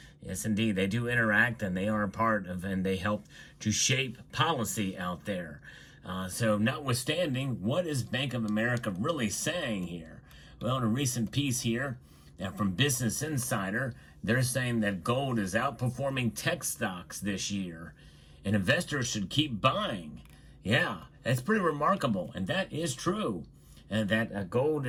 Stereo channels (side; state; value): both; identical; correlation 1.00